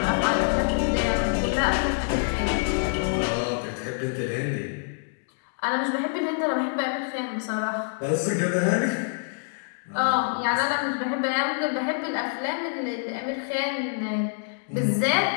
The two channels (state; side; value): silent; right; digital silence